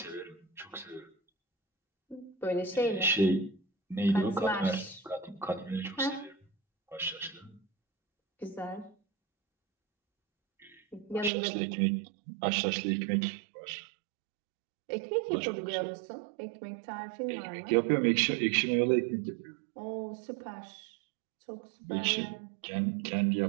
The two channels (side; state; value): left; drops out; at 11.3 s